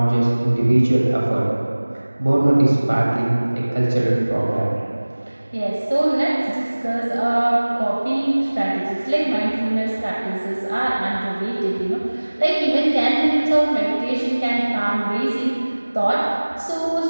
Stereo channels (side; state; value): both; inverted; correlation -1.00